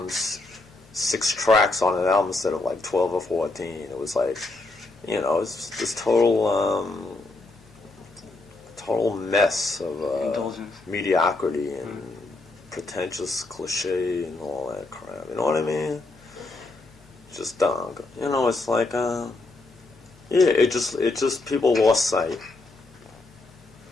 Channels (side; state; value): right; quieter; 3.2 dB